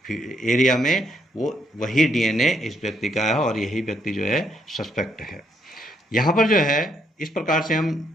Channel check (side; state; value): both; normal; correlation 0.73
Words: एरिया में, वो वही डीएनए इस व्यक्ति का है और यही व्यक्ति जो है सस्पेक्ट है। यहाँ पर जो है इस प्रकार से हम